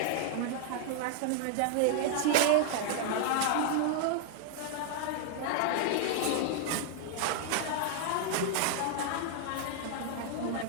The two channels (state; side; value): different; both; correlation -0.01